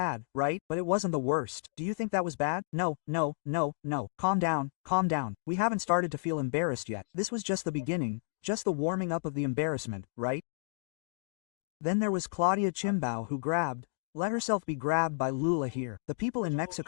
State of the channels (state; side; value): silent; right; digital silence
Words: right? But it wasn't the worst. Do you think that was bad? No. Calm down, calm down. We haven't started to feel embarrassed yet. This was just the beginning, just the warming up of the embarrassment, right? Then there was Claudia Sheinbaum who let herself be grabbed by LULA here. The people in